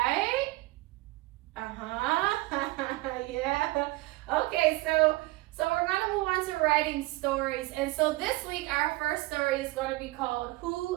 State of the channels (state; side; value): quieter; left; 20.6 dB